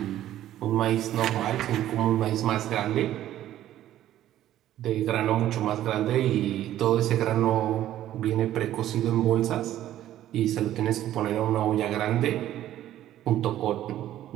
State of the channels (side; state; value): left; quieter; 12.8 dB